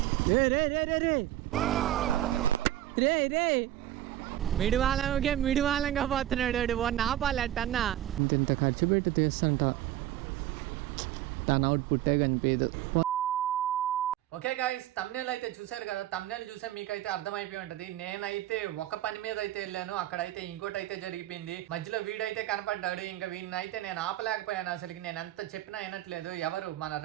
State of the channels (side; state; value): left; quieter; 13.4 dB